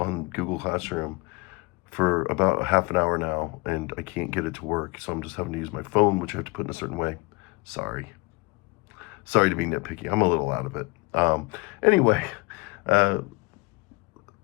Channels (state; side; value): quieter; right; 25.0 dB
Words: Google Classroom for about half an hour now, and I can't get it to work. So I'm just having to use my phone, which I have to put in a certain way. Sorry. Sorry to be nitpicky. I'm a little out of it. Anyway, uh,